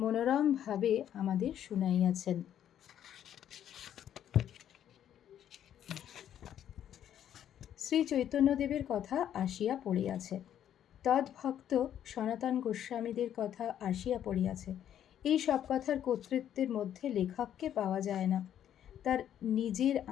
আমাদের শুনাইয়াছেন। শ্রী চৈতন্যদেবের কথা আসিয়া পড়িয়াছে। তদ্ভক্ত সনাতন গোস্বামীদের কথা আসিয়া পড়িয়াছে। এই সব কথার কর্তৃত্বের মধ্যে লেখককে পাওয়া যায় না। তার নিজের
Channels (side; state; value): right; quieter; 10.3 dB